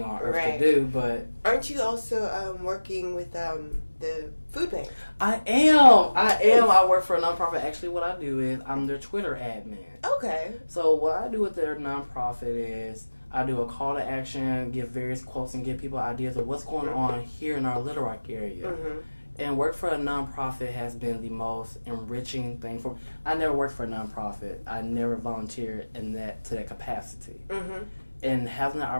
on earth to do, but... Aren't you also working with the food bank? I am. I work for a nonprofit. Actually, what I do is I'm their Twitter admin. Okay. So what I do with their nonprofit is I do a call to action, give various quotes, and give people ideas of what's going on here in our Little Rock area. Mm-hmm. And work for a nonprofit has been the most enriching thing for me. I never worked for a nonprofit. I never volunteered to that capacity. Mm-hmm. And having the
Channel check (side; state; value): both; inverted; correlation -1.00